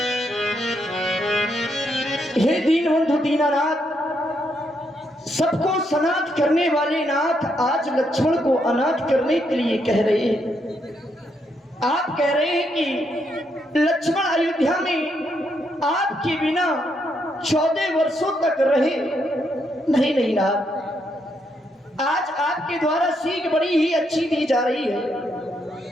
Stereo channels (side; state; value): both; normal; correlation 0.77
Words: हे दीनबंधु दीनानाथ, सबको सनाथ करने वाले नाथ आज लक्ष्मण को अनाथ करने के लिए कह रहे हैं। आप कह रहे हैं कि लक्ष्मण अयोध्या में आपके बिना 14 वर्षों तक रहे। नहीं नहीं नाथ, आज आपके द्वारा सीख बड़ी ही अच्छी दी जा रही है।